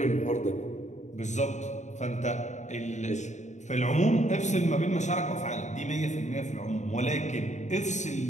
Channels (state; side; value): late; right; 0.34 ms